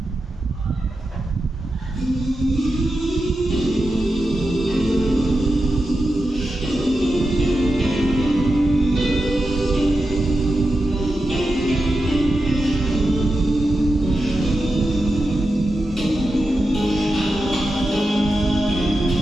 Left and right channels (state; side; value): normal; both; correlation 0.90